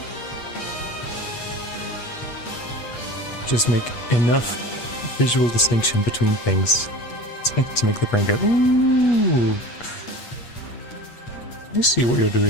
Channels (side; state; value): right; late; 8.4 ms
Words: Just make enough visual distinction between things to make the brain go, ooh, I see what you're